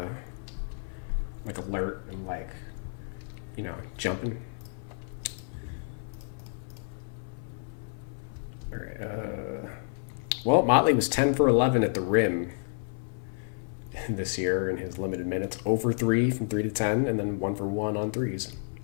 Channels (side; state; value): right; silent; 58 dB below the other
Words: like alert and like, you know, jumping. All right. Well, Motley was 10 for 11 at the rim this year in his limited minutes. 0 for 3 from 3 to 10, and then 1 for 1 on threes.